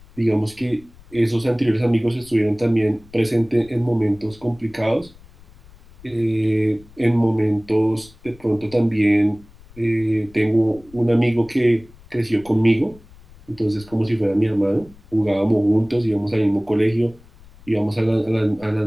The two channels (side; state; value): left; noise; rumble, 24 dB below the sound